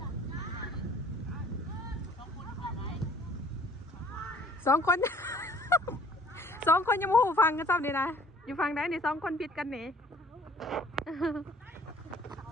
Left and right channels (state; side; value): normal; both; correlation 0.54